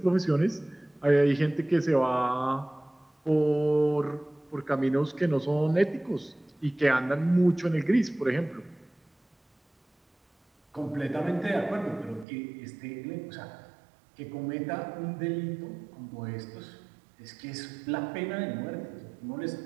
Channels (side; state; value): left; drops out; at 12.2 s